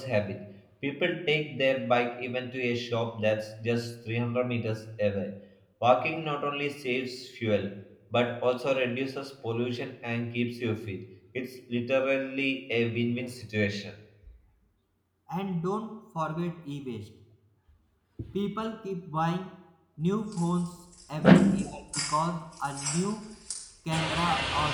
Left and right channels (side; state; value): both; identical; correlation 1.00